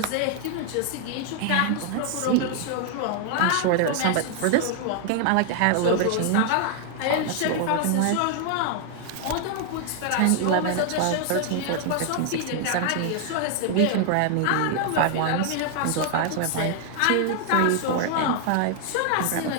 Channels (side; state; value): both; different; correlation 0.00